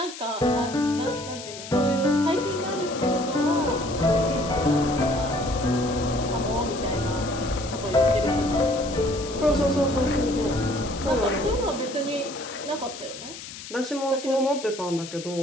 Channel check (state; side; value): noise; left; hiss, 12 dB below the sound